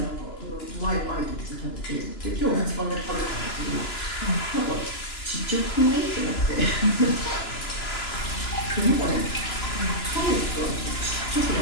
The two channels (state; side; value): late; right; 2.9 ms